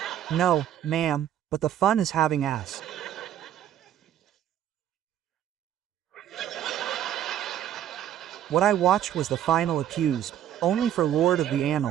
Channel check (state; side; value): quieter; left; 10.7 dB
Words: No, ma'am, but the fun is having ass. What I watched was The Final Accused, only for Lord of the